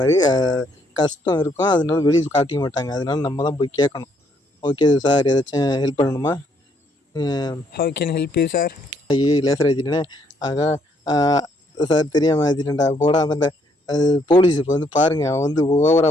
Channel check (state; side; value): normal; both; correlation 0.69